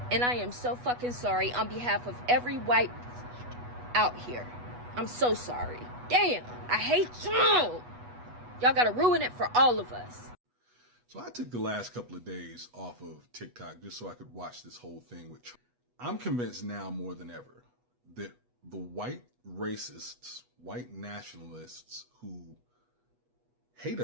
and I am so fucking sorry on behalf of every white out here. I'm so sorry. Damn, I hate y'all. Y'all gotta ruin it for all of us. So I took the last couple of days off of TikTok just so I could watch this whole thing with Trump. I'm convinced now more than ever that the white racists, white nationalists who hate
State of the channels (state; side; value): late; left; 8.2 ms